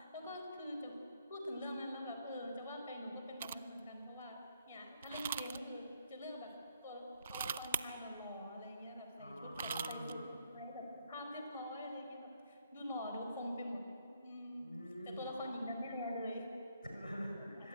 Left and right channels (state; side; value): inverted; both; correlation -0.72